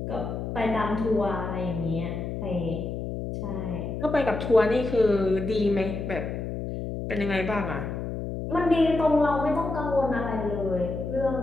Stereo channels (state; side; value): noise; left; hum, 5 dB below the sound